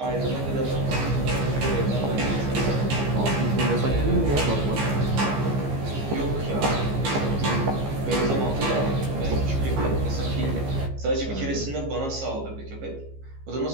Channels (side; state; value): left; late; 15 ms